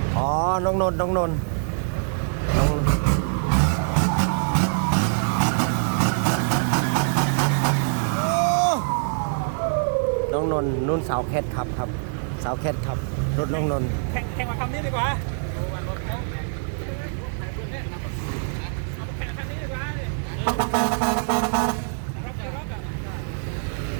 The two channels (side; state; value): left; silent; digital silence